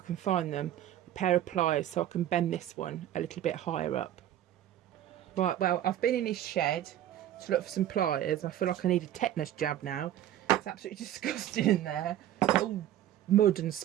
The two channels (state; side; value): quieter; left; 12.0 dB